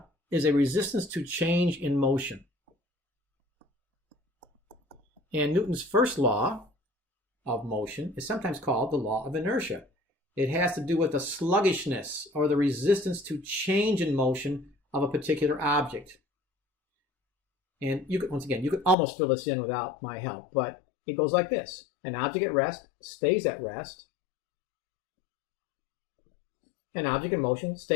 is a resistance to change in motion. And Newton's first law of motion is sometimes called the law of inertia. It has to do with the sluggishness or the resistance to change in motion of a particular object. And you could, once again, you could almost fill this in without my help, but it goes like this. An object at rest stays at rest. An object in motion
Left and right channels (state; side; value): drops out; right; at 18.9 s